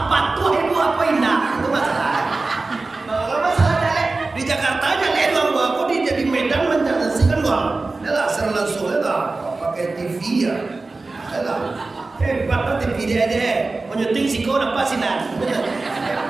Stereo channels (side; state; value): left; quieter; 3.5 dB